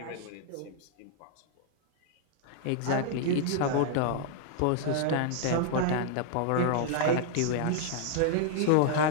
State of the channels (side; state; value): both; different; correlation -0.01